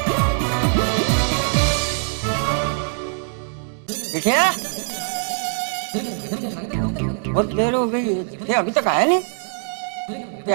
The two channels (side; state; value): left; silent; digital silence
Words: देखिए, बहुत देर हो गई, ये अभी तक आया नहीं। ये